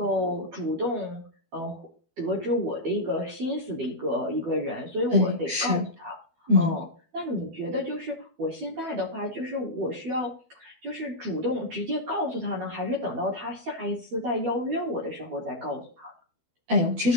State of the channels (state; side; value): late; left; 12 ms